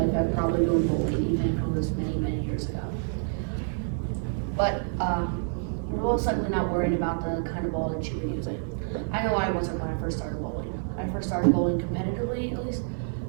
life have probably known bowling, even if it was many, many years ago. But you're most likely not worried about the kind of ball that you were using. I know I wasn't when I first started bowling. I first started bowling competitively, at least,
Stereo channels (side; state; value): left; silent; 57 dB below the other